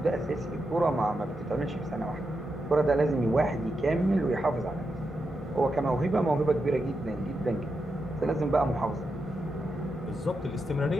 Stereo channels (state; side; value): normal; both; correlation 0.86